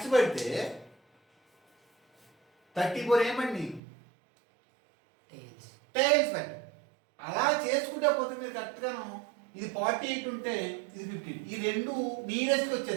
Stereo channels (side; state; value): left; drops out; at 3.8 s